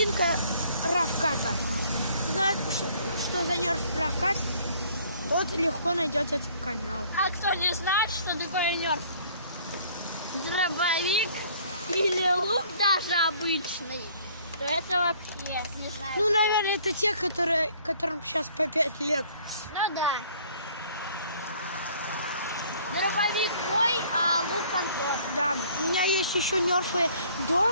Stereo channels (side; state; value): both; inverted; correlation -0.57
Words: Равката. Ты знаешь, что за нерф Равкат? Тот легко найдет этот канал. А кто не знает, что такое нерф? Дробовик или лук даже обычный, то это вообще не знаю. Ну, наверное, это те, которым сейчас по 5 лет. Ну да. Дробовик мой, а лук Антон. Да, у меня есть еще нерфы